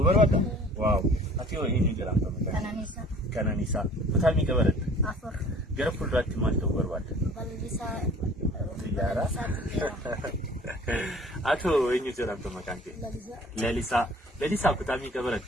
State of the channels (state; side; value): normal; both; correlation 0.49